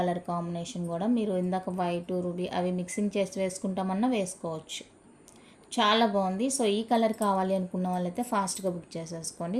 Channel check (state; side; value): identical; both; correlation 1.00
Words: కాంబినేషన్ కూడా. మీరు ఇందాక వైట్ రూబీ అవి మిక్సింగ్ చేసి వేసుకుంటామన్నా వేసుకోవచ్చు, చాలా బాగుంది. సో ఈ కలర్ కావాలి అనుకున్న వాళ్ళైతే ఫాస్ట్గా బుక్ చేసేసుకోండి.